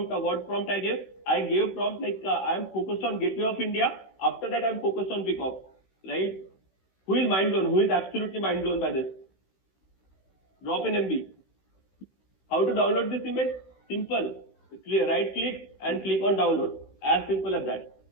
I gave? I gave prompt like I am focused on Gateway of India. After that, I am focused on Peacock, right? Who is mind blown? Who is absolutely mind blown by this? Drop in MB. How to download this image? Simple. Right click and click on download. As simple as that.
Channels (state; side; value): late; right; 16 ms